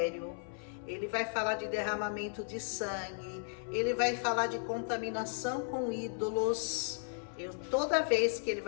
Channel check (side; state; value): right; silent; 54 dB below the other